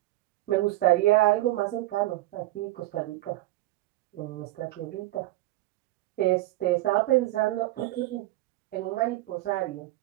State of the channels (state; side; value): quieter; left; 17.5 dB